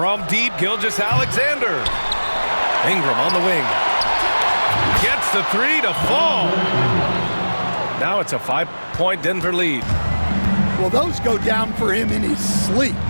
deep, Gilgeous-Alexander. Ingram on the wing. Gets the 3 to fall. Now it's a 5-point Denver lead. Well, those go down for him in his sleep.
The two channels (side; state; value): both; inverted; correlation -1.00